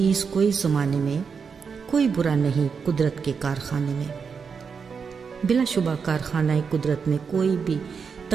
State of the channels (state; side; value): quieter; left; 5.9 dB